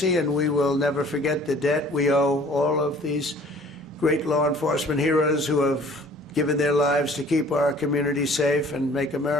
and we will never forget the debt we owe all of these great law enforcement heroes who have given their lives to keep our community safe and make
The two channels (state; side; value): normal; both; correlation 0.52